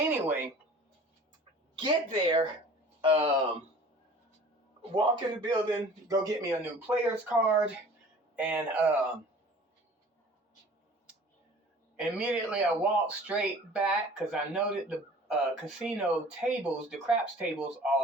get there, walk in the building, go get me a new player's card, and immediately I walked straight back because I know that the casino tables, the craps tables,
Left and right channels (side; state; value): both; normal; correlation 0.46